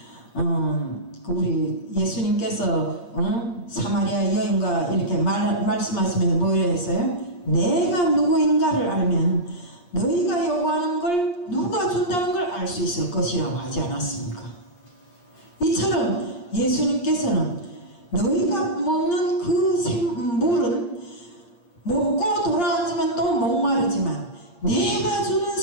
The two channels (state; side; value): late; right; 8.5 ms